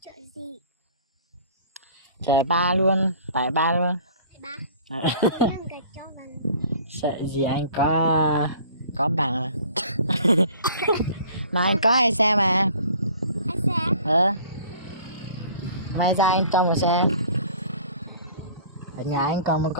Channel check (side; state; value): both; inverted; correlation -0.49